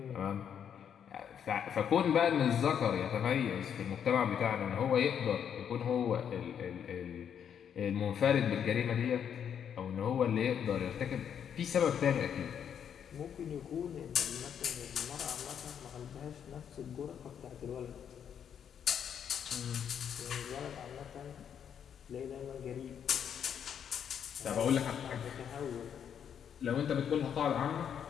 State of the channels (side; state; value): right; quieter; 8.4 dB